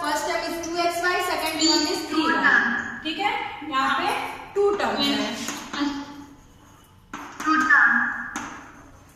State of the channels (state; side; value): identical; both; correlation 1.00